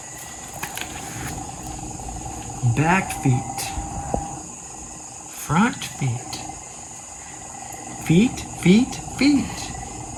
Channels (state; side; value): identical; both; correlation 1.00